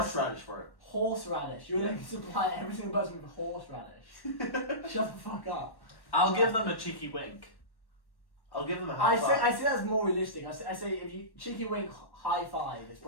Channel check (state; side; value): late; right; 1.1 ms